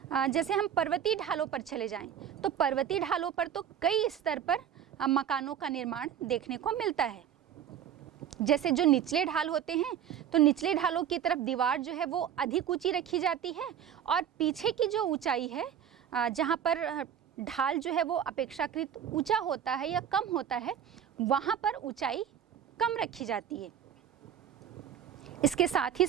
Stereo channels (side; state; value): left; quieter; 9.2 dB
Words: जैसे हम पर्वतीय ढालों पर चले जाएं, तो पर्वतीय ढालों पर तो कई स्तर पर मकानों का निर्माण देखने को मिलता है। जैसे जो निचले ढाल होते हैं, तो निचले ढालों की तरफ दीवार जो है वो अधिक ऊंची रखी जाती है और पीछे की जो ऊंचाई है, जहाँ पर ढाल जो है वो अपेक्षाकृत ऊंचा होता है या कम होता है, वहाँ पर ऊंचाई कम रखी जाती है। इसके साथ ही